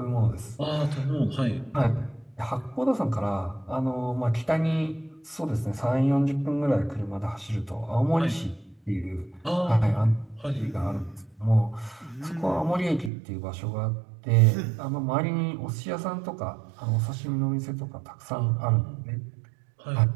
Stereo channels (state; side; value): drops out; left; at 13.1 s